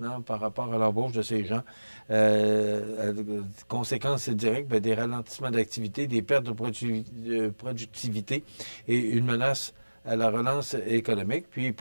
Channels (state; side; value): inverted; both; correlation -1.00